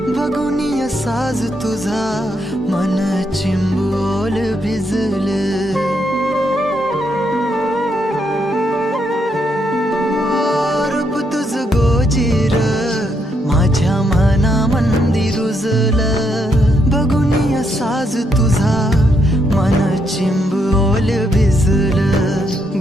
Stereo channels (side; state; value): both; normal; correlation 0.77